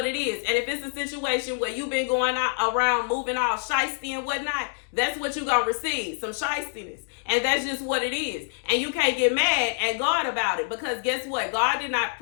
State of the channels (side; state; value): right; silent; digital silence